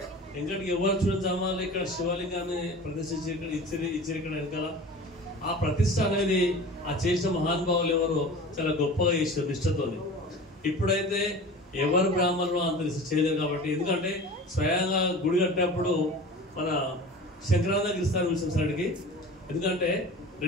ఇంకటికి ఎవరు చూడాలి ఇక్కడ శివలింగాన్ని ప్రతిష్ఠించి ఇక్కడ ఇచ్చారు ఇక్కడ వెనకాల ఆ ప్రతిష్ట అనేది ఆ చేసిన మహానుభావులు ఎవరు చాలా గొప్పగా చేశారు నిష్ఠతో. ఇప్పుడైతే ఎవరు బ్రాహ్మణులు అంత చేయలేరు కాబట్టి ఎందుకంటే స్వయంగా గుడి కట్టినప్పుడు మన శంకరానంద గిరిస్తాను పిలిచిన సార్కి. ఎందుకంటే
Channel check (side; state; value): both; normal; correlation 0.37